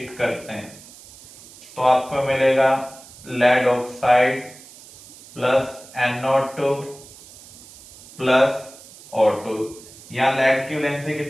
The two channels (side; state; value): right; noise; hiss, 20 dB below the sound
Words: करते हैं तो आपको मिलेगा lead oxide plus NO2 plus O2। यहां लेड की वैलेंसी